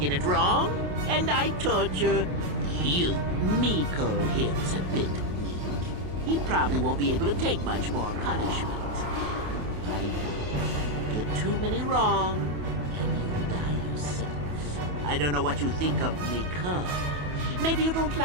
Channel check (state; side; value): late; left; 28 ms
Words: it wrong, and I torture you. Miko here is a bit weak. He probably won't be able to take much more punishment. I get too many wrong, and you die yourself. I don't know what you think of Miko. Maybe you don't